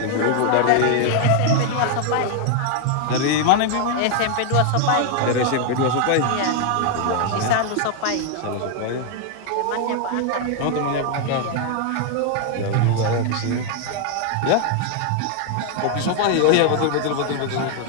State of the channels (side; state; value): both; different; correlation 0.00